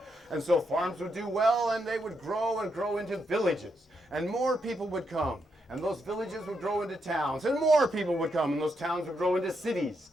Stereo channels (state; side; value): normal; both; correlation 0.80